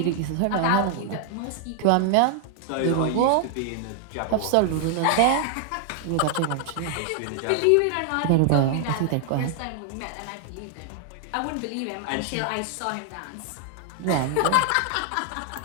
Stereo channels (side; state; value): both; different; correlation 0.00